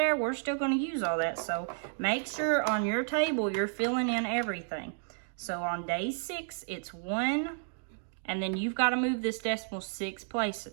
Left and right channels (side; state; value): left; silent; digital silence